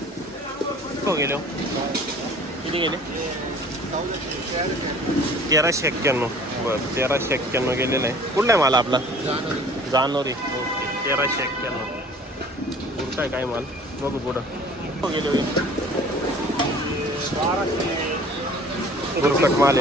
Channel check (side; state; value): both; normal; correlation 0.49